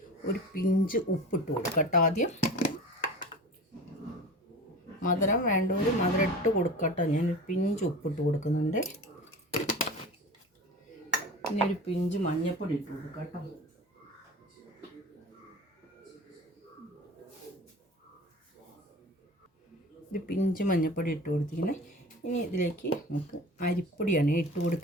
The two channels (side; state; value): both; normal; correlation 0.36